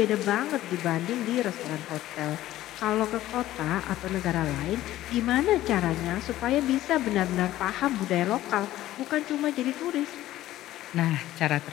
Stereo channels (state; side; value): quieter; right; 14.6 dB